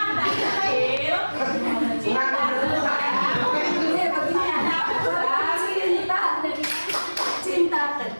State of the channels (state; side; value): inverted; both; correlation -1.00